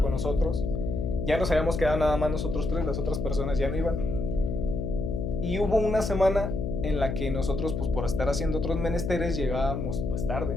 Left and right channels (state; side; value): noise; left; hum, 2 dB below the sound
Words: con nosotros, ya nos habíamos quedado nada más nosotros 3, las otras personas ya no iban. Y hubo una semana en la que nosotros, pues por estar haciendo otros menesteres, llegábamos pues